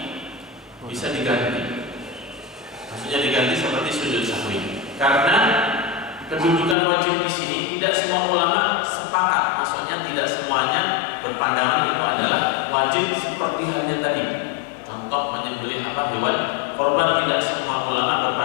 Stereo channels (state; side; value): drops out; right; at 6.8 s